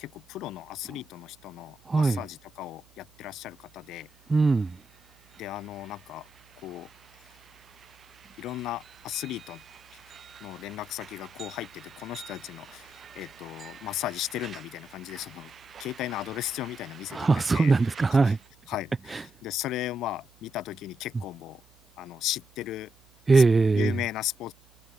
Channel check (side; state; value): right; noise; hum, 30 dB below the sound